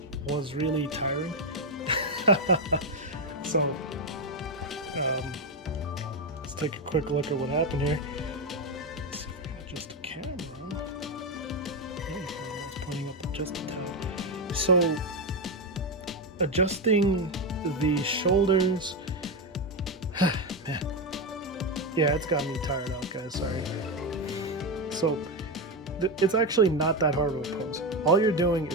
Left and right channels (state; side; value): normal; both; correlation 0.09